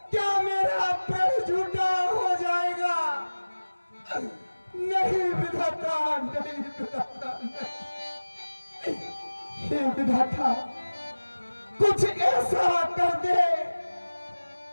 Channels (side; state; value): both; inverted; correlation -1.00